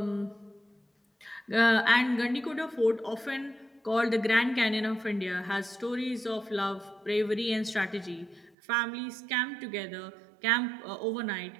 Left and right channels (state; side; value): drops out; left; at 8.6 s